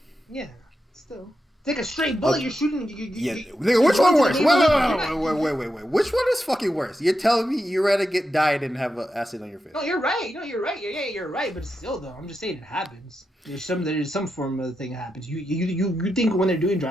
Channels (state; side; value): normal; both; correlation 0.87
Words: Yeah, still. Take a straight bullet, you're shooting. Nigga, which one worse? Wait. Which one is fucking worse? You're telling me you'd rather get died than have acid on your face? No, you're right. You're right. But still, though, I'm just saying it happens. There's some form of the thing that happens. You think when they're doing